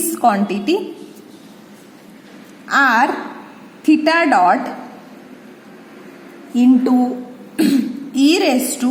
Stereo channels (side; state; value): both; identical; correlation 1.00